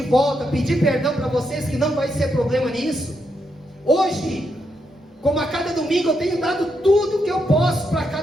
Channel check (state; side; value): normal; both; correlation 0.81